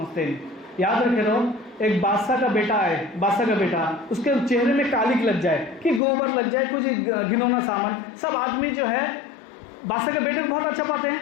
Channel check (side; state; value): right; drops out; at 6.0 s